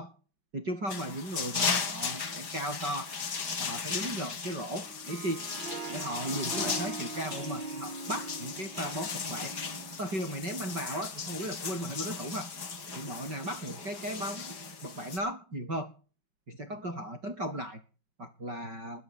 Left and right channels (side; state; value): left; late; 5.0 ms